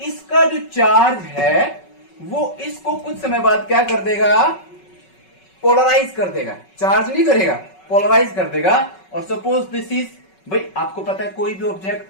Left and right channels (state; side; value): late; right; 5.3 ms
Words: इसका जो चार्ज है वो इसको कुछ समय बाद क्या कर देगा? पोलराइज कर देगा। चार्ज नहीं करेगा, पोलराइज कर देगा। और सपोज दिस इज, भाई आपको पता है कोई भी